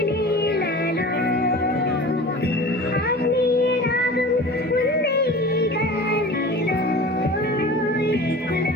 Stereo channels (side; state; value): both; normal; correlation 0.38